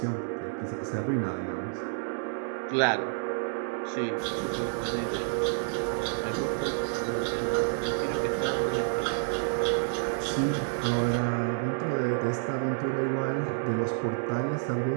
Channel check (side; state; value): left; silent; 58 dB below the other